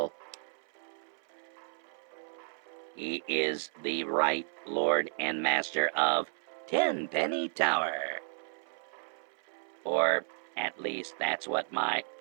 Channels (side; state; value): left; silent; 56 dB below the other